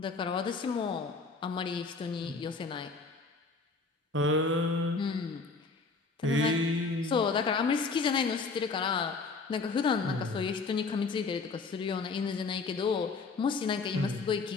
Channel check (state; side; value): quieter; right; 4.2 dB